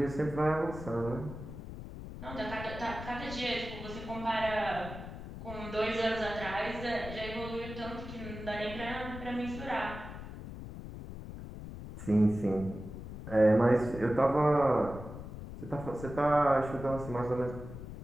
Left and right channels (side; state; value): left; noise; rumble, 10 dB below the sound